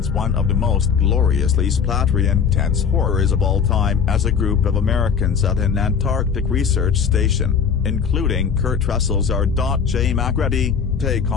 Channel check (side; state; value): right; quieter; 6.6 dB